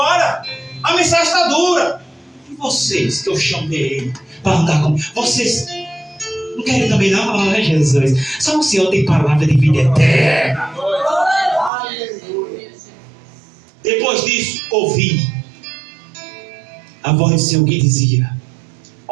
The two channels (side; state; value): left; drops out; at 11.7 s